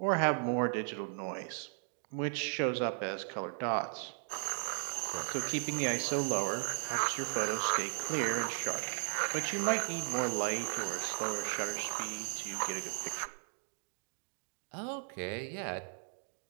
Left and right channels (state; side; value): silent; left; 54 dB below the other